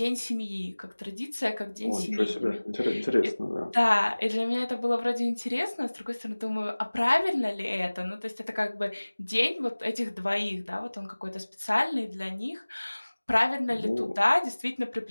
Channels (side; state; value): both; inverted; correlation -1.00